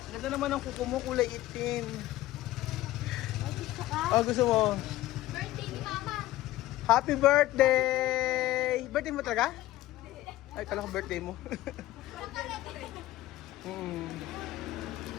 Ganda naman ang kuko mo, kulay itim. Oh, gusto mo? Birthday ni Mama. Happy birthday! Birthday mo talaga? Ay, kala ko birthday mo.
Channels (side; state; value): right; quieter; 15.8 dB